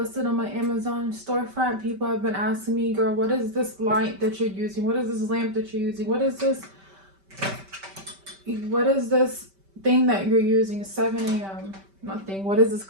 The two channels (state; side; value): late; left; 5.1 ms